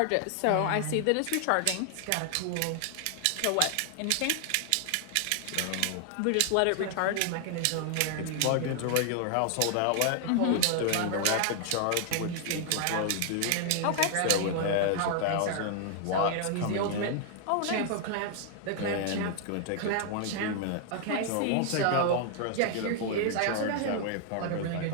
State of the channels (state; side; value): different; both; correlation 0.00